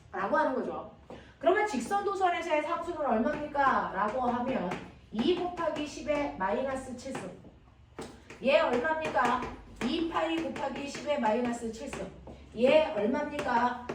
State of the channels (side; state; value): both; identical; correlation 1.00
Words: 라고 하는 거죠. 그러면 직선 도선에서의 상수는 얼마입니까? 라고 하면 2 곱하기 10의 마이너스 7승. 얘 얼마입니까? 2파이 곱하기 10의 마이너스 7승. 얘 얼마입니까?